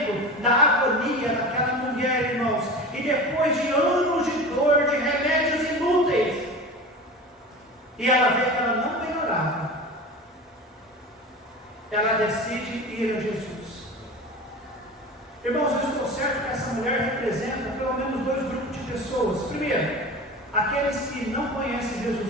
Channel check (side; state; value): both; normal; correlation 0.33